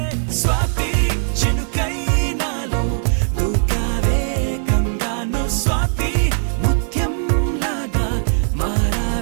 స్వాతి చినుకై నాలో దూకావే గంగాను స్వాతి ముత్యం లాగా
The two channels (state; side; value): silent; left; 66 dB below the other